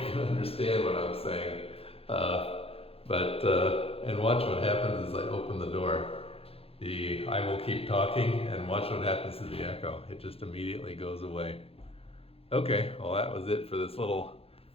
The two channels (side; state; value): right; late; 0.28 ms